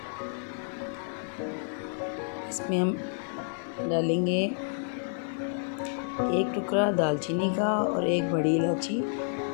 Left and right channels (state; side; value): silent; right; digital silence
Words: इसमें हम डालेंगे एक टुकड़ा दालचीनी का और एक बड़ी इलायची